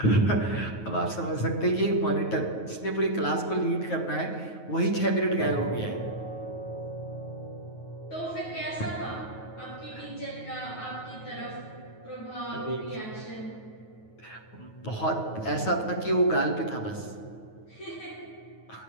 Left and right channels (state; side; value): late; right; 9.3 ms